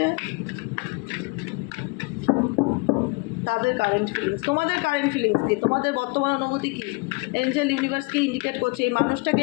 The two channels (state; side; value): quieter; right; 28.5 dB